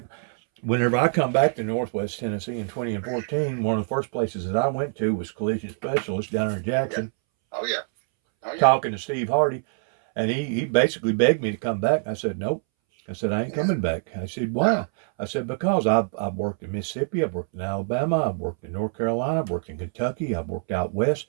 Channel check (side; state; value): left; silent; 62 dB below the other